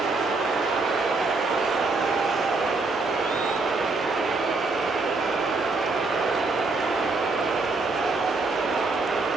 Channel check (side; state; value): left; quieter; 3.7 dB